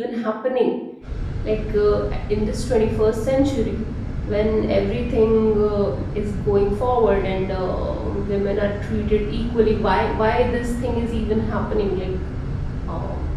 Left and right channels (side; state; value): both; identical; correlation 1.00